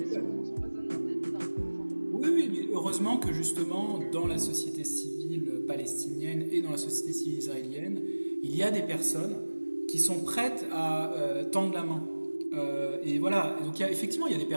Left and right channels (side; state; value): both; inverted; correlation -1.00